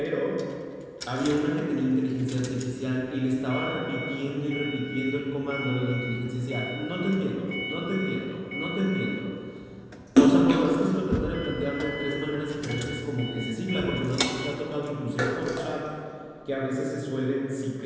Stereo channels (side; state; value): both; identical; correlation 1.00